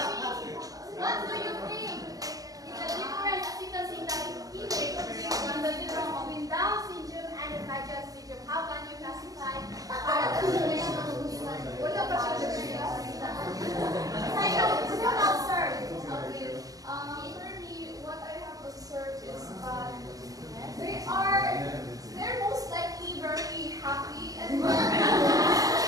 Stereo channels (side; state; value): left; late; 0.17 ms